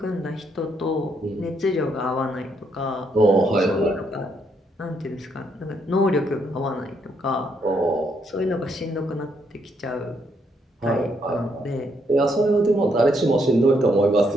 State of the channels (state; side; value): normal; both; correlation 0.74